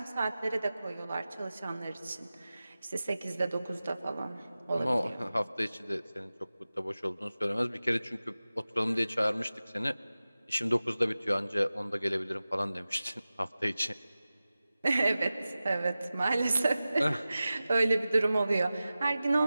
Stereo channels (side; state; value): both; inverted; correlation -0.96